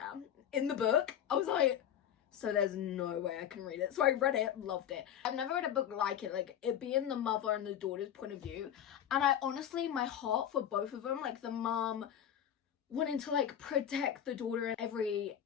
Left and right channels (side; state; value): right; quieter; 9.8 dB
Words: in the book. I was like, so there's no way I can read it. So I read it, loved it. I've never read a book like it, like it being the mother and the daughter's point of view. And I honestly, my heart for both of them, like the mom wanting to like protect the daughter in every